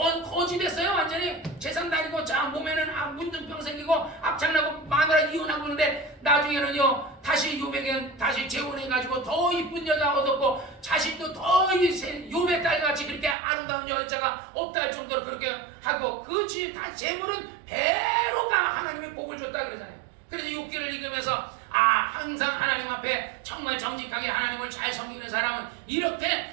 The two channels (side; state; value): left; drops out; at 13.4 s